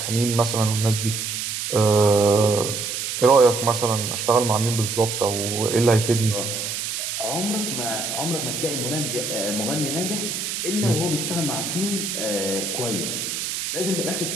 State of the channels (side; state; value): right; noise; hiss, 3 dB below the sound